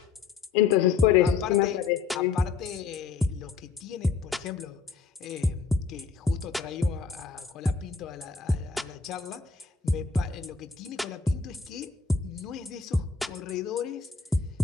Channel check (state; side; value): quieter; right; 5.3 dB